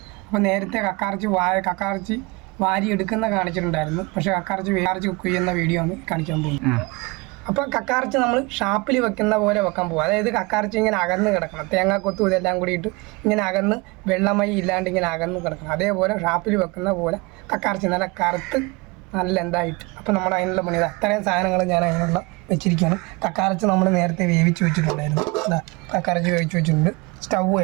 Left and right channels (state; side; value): quieter; left; 25.9 dB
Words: അപ്പോൾ നേരത്തെ കക്കാറച്ചി വാരി എടുക്കുന്ന കാണിച്ചിട്ടുണ്ടായിരുന്നു. പക്ഷേ കക്കാറച്ചി കുക്ക് ചെയ്യുന്ന വീഡിയോ ആണ് കാണിക്കാൻ പോകുന്നത്. അപ്പോൾ കക്കാറച്ചി നമ്മൾ ഷാപ്പിൽ വെക്കുന്ന പോലെ വെക്കാൻ പോകും. അതായത് കക്കാറച്ചി ഇങ്ങനെ അകന്ന് കിടക്കണം, തേങ്ങാക്കൊത്തും ഇതെല്ലാം കൂടിയിട്ട് ഇങ്ങനെ അകന്ന് വെള്ളമൈ ഇല്ലാണ്ട് ഇങ്ങനെ അകന്ന് കിടക്കണം. അതേപോലെ ഷാപ്പിൽ വെക്കുന്ന പോലെ കക്കാറച്ചി നല്ല കറുത്ത് നല്ല എന്തായിട്ട്. അപ്പോൾ നമ്മൾ അതിനുള്ള പണി അത്രയും സാധനങ്ങൾ ഞാൻ അതിനുള്ള വെച്ചിരിക്കുകയാണ്. കക്കാറച്ചി നമ്മൾ നേരത്തെ വേവിച്ച് വെച്ചിട്ടുണ്ടായിരുന്നു. അതാ കക്കാറച്ചി വേവിച്ച് വെച്ചിട്ടുണ്ട്. സ്റ്റൗ